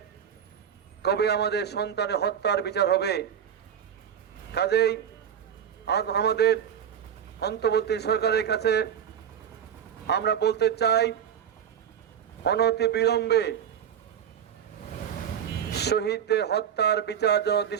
কবে আমাদের সন্তানের হত্যার বিচার হবে। কাজেই আজ আমাদের অন্তর্বর্তী সরকারের কাছে আমরা বলতে চাই, অনতি বিলম্বে শহীদদের হত্যার বিচার যেন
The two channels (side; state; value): left; quieter; 8.8 dB